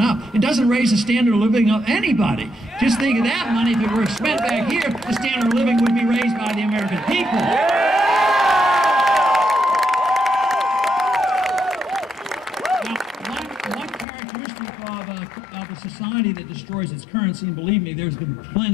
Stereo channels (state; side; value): drops out; right; at 14.1 s